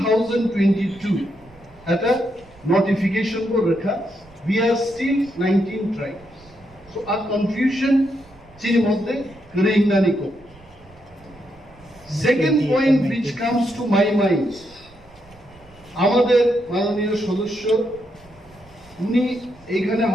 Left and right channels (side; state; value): right; noise; rumble, 25 dB below the sound